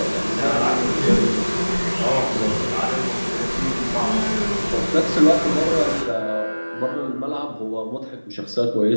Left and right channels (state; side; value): inverted; both; correlation -1.00